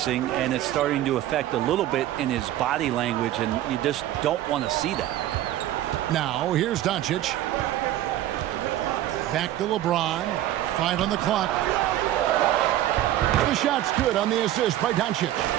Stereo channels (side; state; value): left; quieter; 13.5 dB